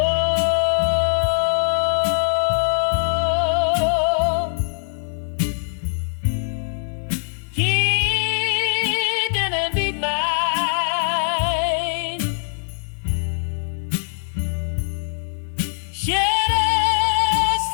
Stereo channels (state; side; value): silent; right; 63 dB below the other